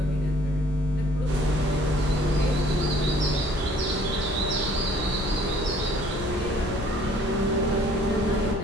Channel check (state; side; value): noise; left; rumble, 10 dB below the sound